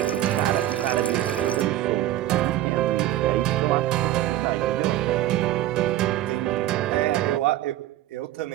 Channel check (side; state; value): left; quieter; 13.7 dB